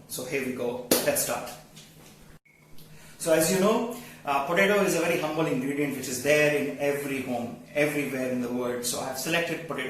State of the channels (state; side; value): identical; both; correlation 1.00